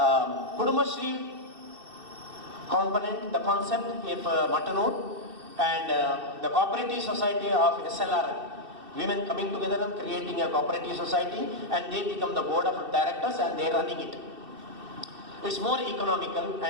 Kudumashri component, the concept of Mattanur, and the cooperative society of SLR, women coming together and creating a cooperative society, and they become the board of directors and they are running it. It's more economical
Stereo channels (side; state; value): left; late; 2.6 ms